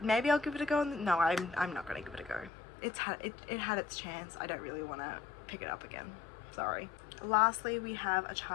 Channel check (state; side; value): drops out; right; at 2.5 s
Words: I'll give it a go. No, I'm not going to give it a go. It had its chance. I don't really want to pick it up again. Sorry. Lastly, we have a